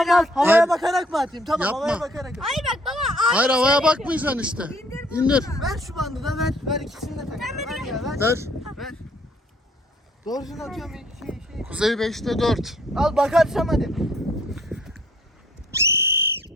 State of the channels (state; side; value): normal; both; correlation 0.63